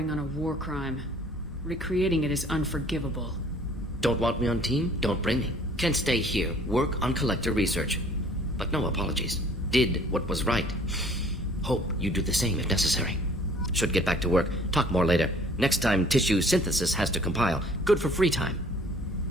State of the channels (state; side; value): normal; both; correlation 0.54